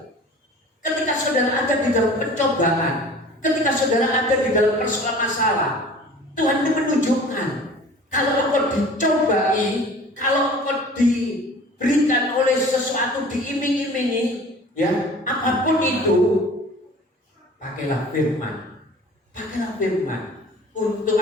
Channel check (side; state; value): both; normal; correlation 0.44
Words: Ketika saudara ada di dalam pencobaan, ketika saudara ada di dalam persoalan masalah, Tuhan itu menunjukkan kalau engkau dicobai, kalau engkau diberikan oleh sesuatu, diiming-imingi, ya, apapun itu, pakailah firman. Pakailah firman. Untuk